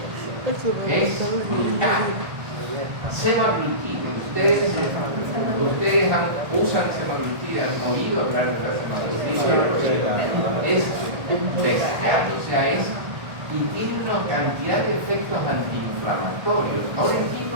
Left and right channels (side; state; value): left; late; 1.4 ms